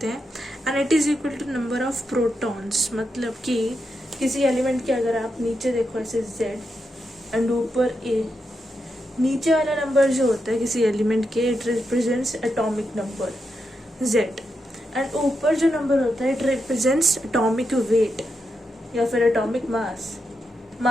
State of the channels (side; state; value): both; normal; correlation 0.85